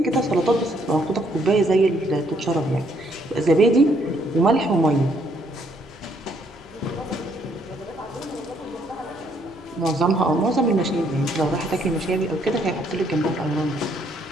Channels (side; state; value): both; normal; correlation 0.69